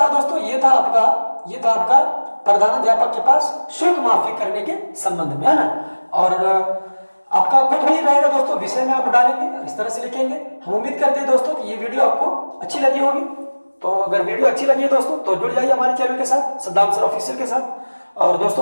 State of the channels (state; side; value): inverted; both; correlation -1.00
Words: दोस्तों? ये था आपका प्रधानाध्यापक के पास शुल्क माफी करने के संबंध में, है ना। और आपका कुछ भी रहेगा दोस्तों, विषय में आप डालेंगे, इस तरह से लिखेंगे। हम उम्मीद करते हैं दोस्तों कि ये वीडियो आपको अच्छी लगी होगी। तो अगर वीडियो अच्छी लगी है दोस्तों तो जुड़ जाइए हमारे चैनल के साथ, सद्दाम सर ऑफिशियल के साथ, और